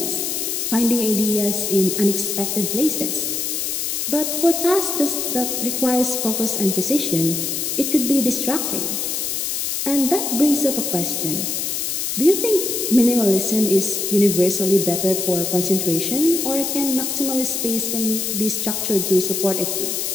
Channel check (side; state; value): left; noise; hiss, 1 dB below the sound